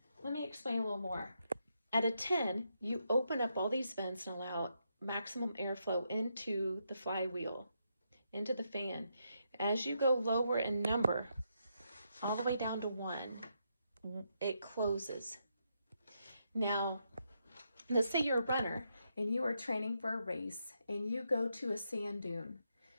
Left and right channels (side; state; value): both; inverted; correlation -0.80